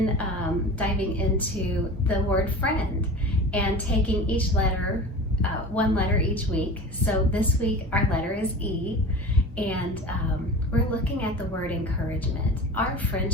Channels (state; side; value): normal; both; correlation 0.35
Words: diving into the word friend and taking each letter, one letter each week. So this week our letter is E, and we're looking at the word encouragement. Our